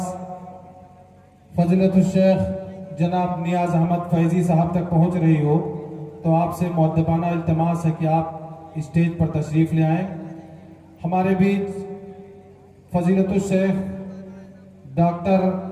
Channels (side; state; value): both; identical; correlation 1.00